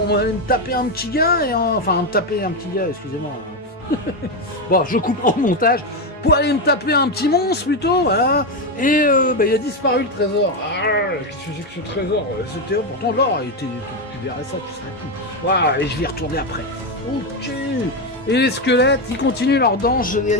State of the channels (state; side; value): normal; both; correlation 0.10